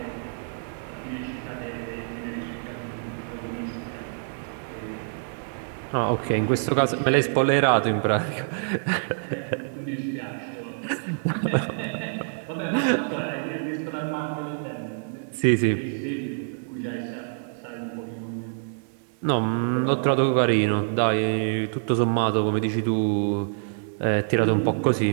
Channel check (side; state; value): left; silent; digital silence